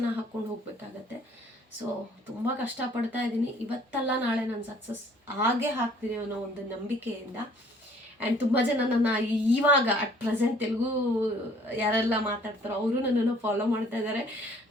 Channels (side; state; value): both; normal; correlation 0.58